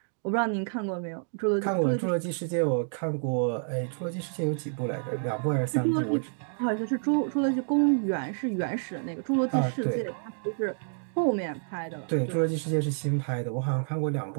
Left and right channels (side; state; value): left; silent; digital silence